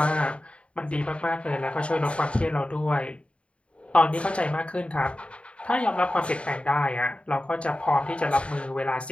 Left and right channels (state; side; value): late; right; 0.060 ms